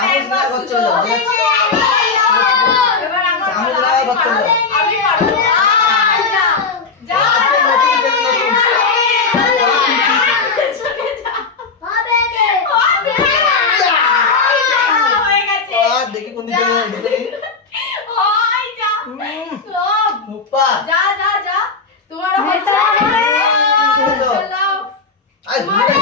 না করতে যাও। এবার আমার চামচ না করতে যাও। আমি পারবো। যা যা আজকে নতুন খেল নতুন। চলে যা হবে রে হয়ে গেছে আর দেখি কোন দিকে যাবে দেখি। ওই যা সব মুপ্পা যা যা যা তোমার হচ্ছে চলো আই ঘুগনি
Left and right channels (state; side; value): quieter; right; 4.6 dB